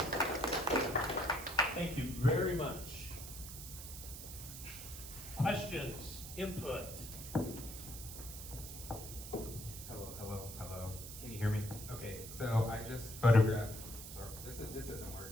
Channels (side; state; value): right; noise; hiss, 10 dB below the sound